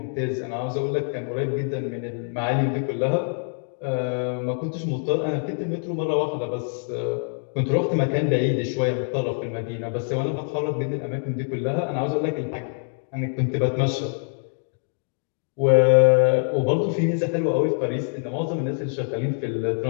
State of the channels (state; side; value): silent; right; 58 dB below the other